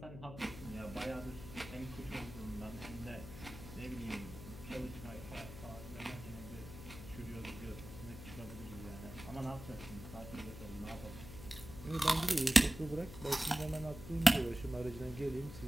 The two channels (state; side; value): noise; left; hum, 12 dB below the sound